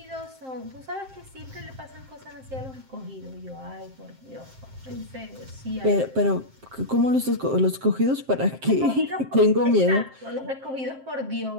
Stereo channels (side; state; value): left; late; 7.6 ms